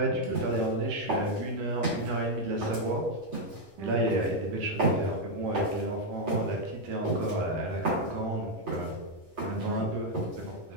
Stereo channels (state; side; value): late; left; 10 ms